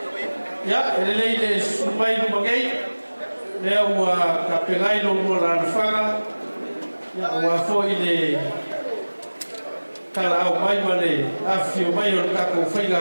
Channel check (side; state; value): both; inverted; correlation -1.00